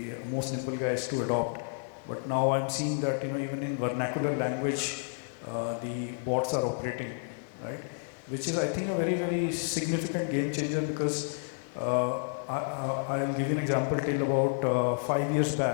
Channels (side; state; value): right; silent; digital silence